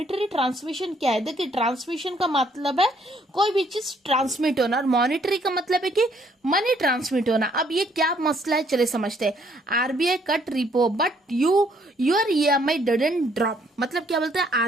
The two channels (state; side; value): normal; both; correlation 0.66